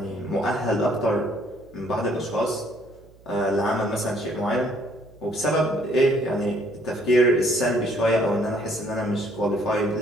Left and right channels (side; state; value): right; noise; hum, 26 dB below the sound